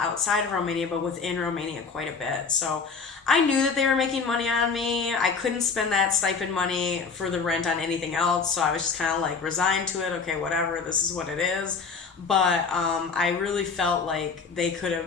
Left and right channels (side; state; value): right; quieter; 5.2 dB